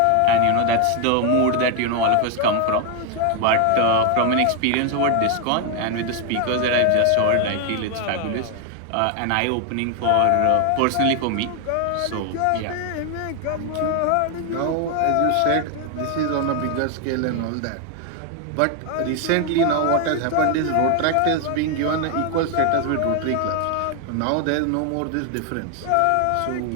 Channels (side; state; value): both; different; correlation 0.01